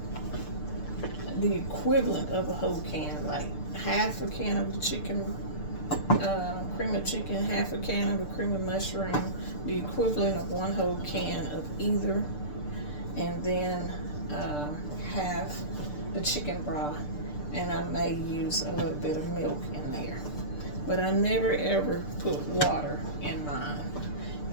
the equivalent of a whole can, like half a can of the chicken, cream of chicken, half a can of the cream of mushroom, the equivalent of 1 whole can of either, and then half the chicken broth, and I may use a little bit of milk in there. But I never ever put water in mine.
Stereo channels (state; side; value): late; right; 6.7 ms